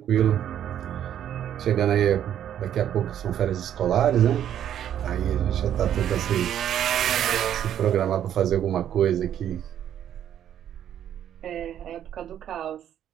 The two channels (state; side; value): quieter; left; 10.3 dB